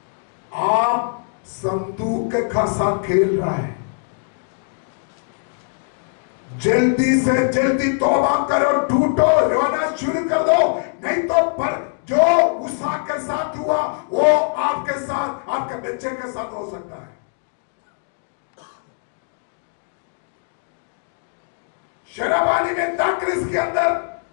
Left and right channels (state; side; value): silent; right; digital silence